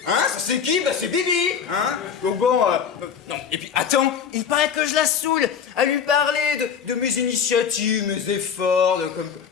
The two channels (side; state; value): right; quieter; 7.3 dB